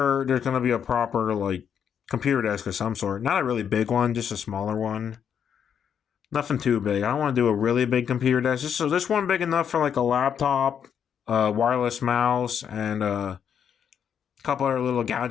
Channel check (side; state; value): right; quieter; 8.0 dB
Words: there's going to be a proper like computer desk of some sort. Not a really big one, just a smaller one. Nothing too big. I don't want to do a really big computer desk. So this one big enough for like a laptop, wireless mouse, and a couple other little